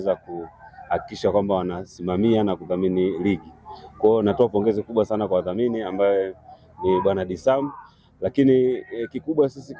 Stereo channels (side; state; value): both; identical; correlation 1.00